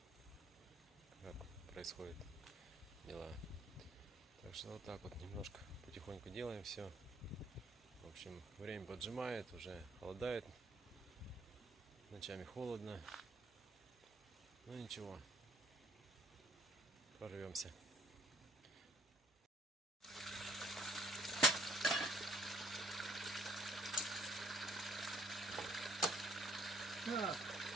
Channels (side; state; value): both; normal; correlation 0.62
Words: как происходит дела. Так что вот так вот немножко потихоньку делаем все. В общем, время поджимает, уже холодает, ночами холодно, но ничего, прорвемся. Так,